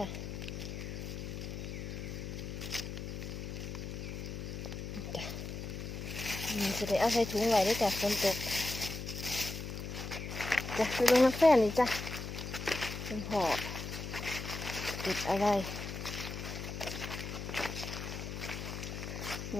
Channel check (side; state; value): left; noise; hum, 6 dB below the sound